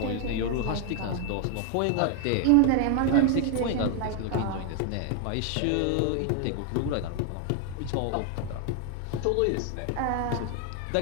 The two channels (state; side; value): different; both; correlation 0.00